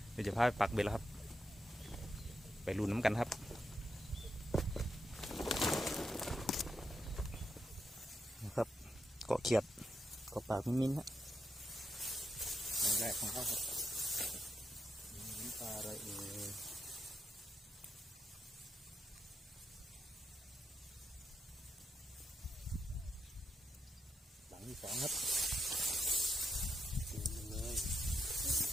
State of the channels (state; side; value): normal; both; correlation 0.83